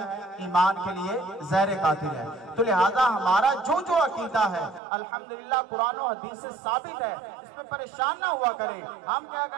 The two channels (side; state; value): left; drops out; at 4.8 s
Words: ایمان کے لیے زہر قاتل ہے۔ تو لہذا ہمارا جو عقیدہ ہے الحمدللہ قرآن و حدیث سے ثابت ہے، اس پہ پریشان نہ ہوا کریں۔ ہم کیا